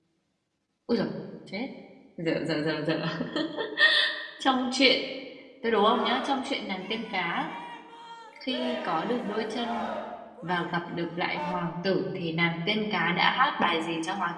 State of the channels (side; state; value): both; identical; correlation 1.00